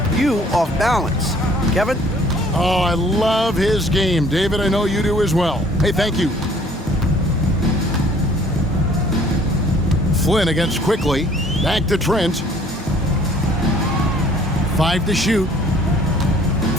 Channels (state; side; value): normal; both; correlation 0.56